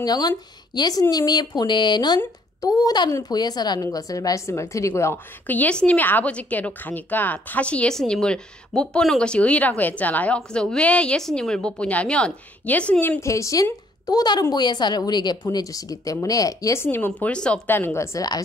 예수님이 보내는 또 다른 보혜사라는 것을 말씀을 드리고요. 그 예수님이 아버지께로 가니까 다시 예수님을 못 보는 것이 의라고 했잖아요. 그래서 왜 예수님을 못 보냐면 예수님 대신 또 다른 보혜사를 우리에게 보내주시기 때문에 예수님은 볼 수 없다는 것을 알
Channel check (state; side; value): normal; both; correlation 0.65